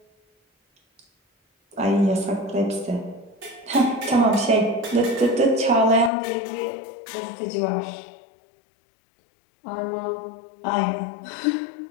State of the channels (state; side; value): drops out; right; at 6.1 s